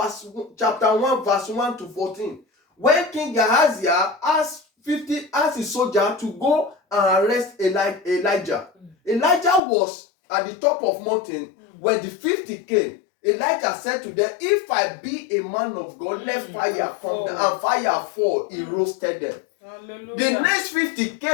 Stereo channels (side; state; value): right; drops out; at 9.6 s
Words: chapter 1 verse 1 to 14, when King Ahaziah asked his soldier to go and arrest Elijah. Elijah was at the top of mountain. When the 50 came, Elijah said to them, if I be a man of God, let fire come down. And fire fall. He roasted them. Hallelujah. The next 50